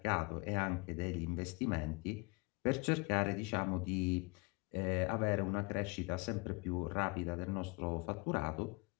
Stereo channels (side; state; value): right; quieter; 28.5 dB